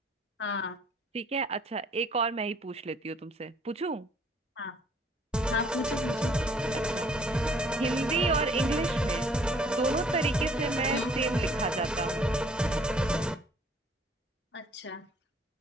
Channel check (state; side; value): normal; both; correlation 0.59